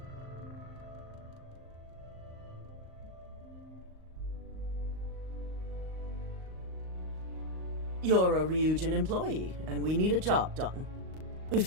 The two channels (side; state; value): left; late; 38 ms